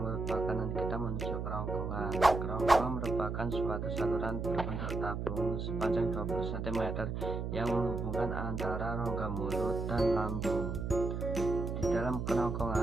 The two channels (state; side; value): noise; right; hum, 3 dB below the sound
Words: makanan kita menuju kerongkongan. Kerongkongan merupakan suatu saluran berbentuk tabung sepanjang 20 cm yang menghubungkan antara rongga mulut dan lambung. Di dalam